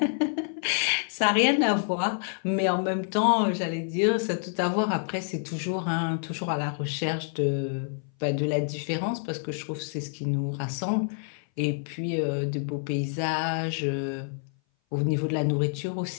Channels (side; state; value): right; silent; 57 dB below the other